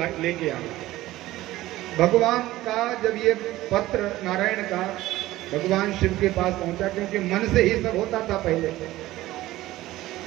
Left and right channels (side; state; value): left; quieter; 16.5 dB